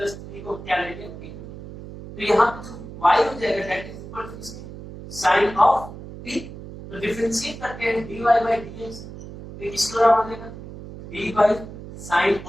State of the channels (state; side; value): noise; right; hum, 13 dB below the sound